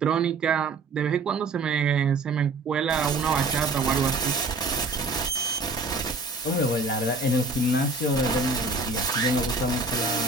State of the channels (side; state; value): left; quieter; 3.4 dB